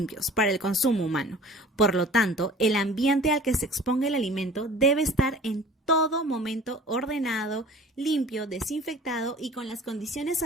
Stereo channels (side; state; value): both; normal; correlation 0.46